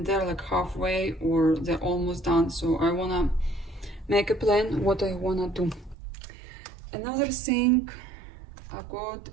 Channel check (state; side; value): drops out; left; at 6.0 s